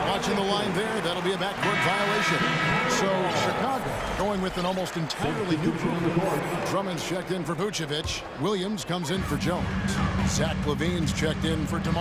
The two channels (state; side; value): identical; both; correlation 1.00